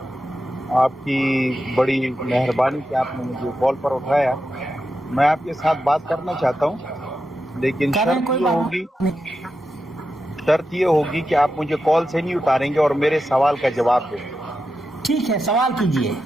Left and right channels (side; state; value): both; normal; correlation 0.89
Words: आपकी बड़ी मेहरबानी कि आपने मुझे कॉल पर उठाया। मैं आपके साथ बात करना चाहता हूँ, लेकिन शर्त ये होगी कि आप मुझे कॉल से नहीं उतारेंगे और मेरे सवाल का जवाब देंगे। ठीक है, सवाल कीजिए।